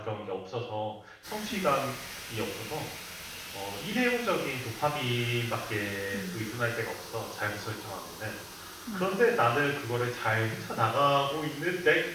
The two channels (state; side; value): identical; both; correlation 1.00